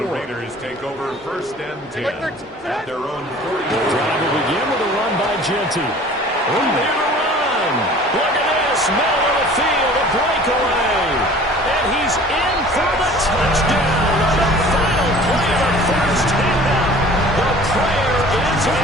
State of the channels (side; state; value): both; normal; correlation 0.47